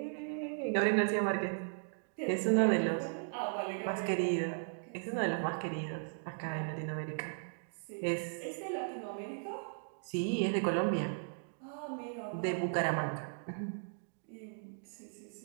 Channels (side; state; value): left; silent; digital silence